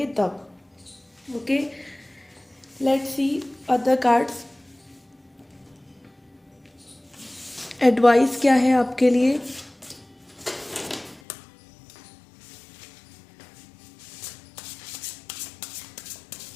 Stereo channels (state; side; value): drops out; right; at 11.2 s